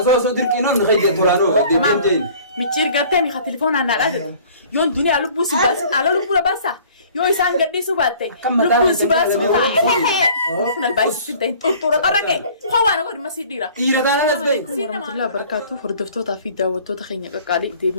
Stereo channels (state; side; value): inverted; both; correlation -0.50